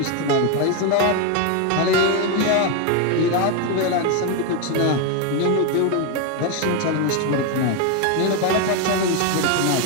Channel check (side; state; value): both; different; correlation 0.02